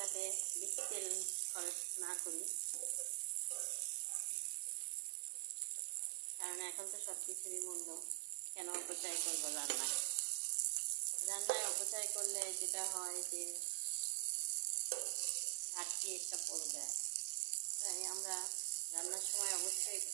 বেশি তেল খরচ না করি, কারণ এখন তো সব কিছুরই মূল্য। কেন অপচয় করবো রান্নায় অপচয় করলে যেটা হয় যে ঘাটতি একটা পড়ে যায়। তাই আমরা রান্নার সময় অবশ্যই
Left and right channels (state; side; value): silent; left; digital silence